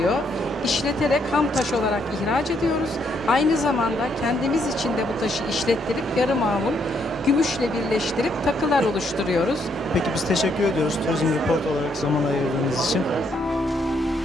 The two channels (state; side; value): normal; both; correlation 0.73